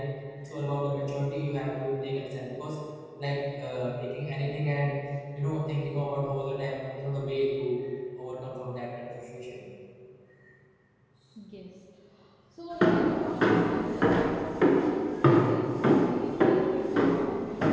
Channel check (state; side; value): identical; both; correlation 1.00